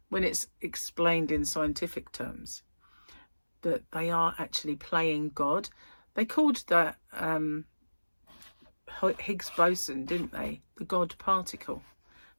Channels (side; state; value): both; inverted; correlation -1.00